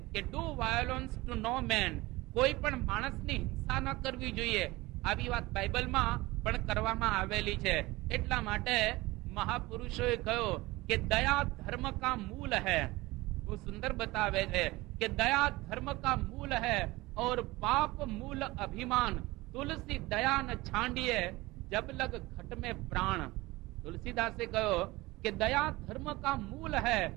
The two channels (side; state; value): left; quieter; 20.6 dB